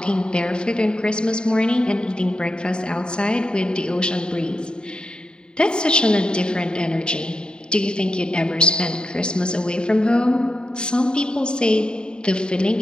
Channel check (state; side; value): late; right; 0.049 ms